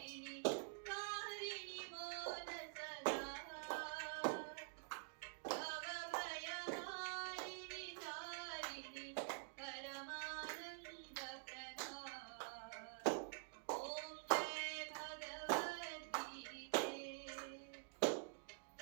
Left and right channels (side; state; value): left; silent; digital silence